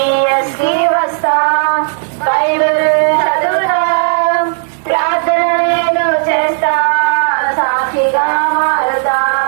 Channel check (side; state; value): left; silent; digital silence